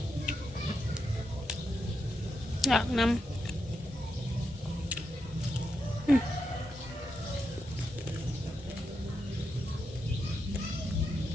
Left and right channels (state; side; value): normal; both; correlation 0.85